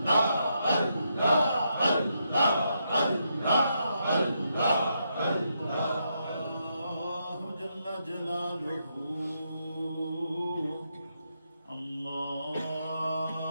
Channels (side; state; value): both; inverted; correlation -0.80